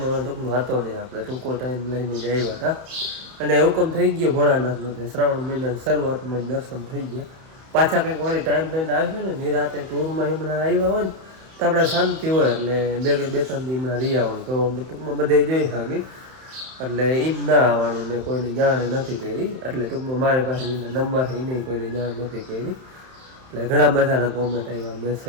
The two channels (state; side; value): late; left; 31 ms